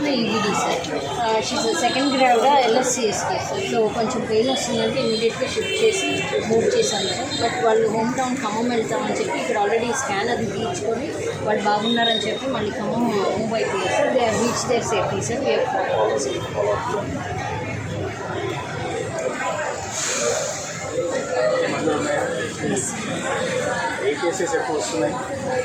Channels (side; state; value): both; identical; correlation 1.00